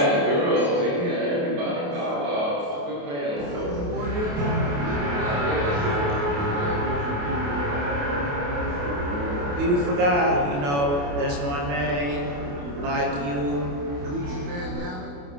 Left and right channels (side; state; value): left; late; 28 ms